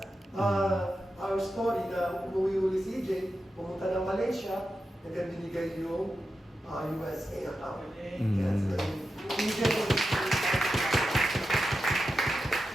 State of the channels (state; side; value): normal; both; correlation 0.90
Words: our story na umuwi uli si Jay, pumunta ng Malaysia, and then binigay yung USA account. Yes, EJ